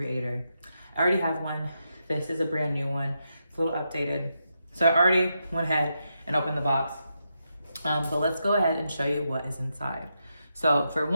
I already have one. This is a brand new one. It's a little updated. So I already went ahead and opened the box. But let's go ahead and show you what is inside. So for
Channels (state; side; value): inverted; both; correlation -0.84